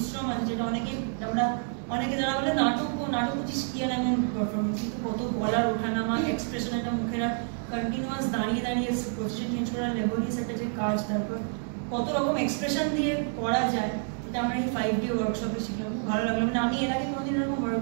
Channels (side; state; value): left; silent; 59 dB below the other